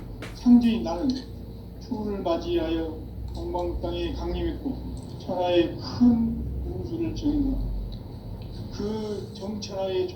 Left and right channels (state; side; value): identical; both; correlation 1.00